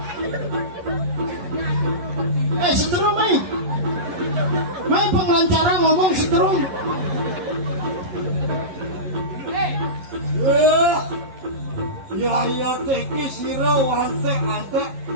Setrum main pengelancaran ngomong setrum. Ya teki siro ante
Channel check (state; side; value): late; left; 11 ms